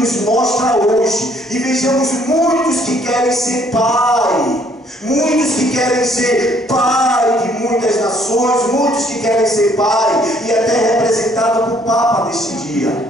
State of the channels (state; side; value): normal; both; correlation 0.64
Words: mostra hoje. E vejamos muitos que querem ser pai. Muitos que querem ser pai de muitas nações. Muitos que querem ser pai. E até representado por Papa neste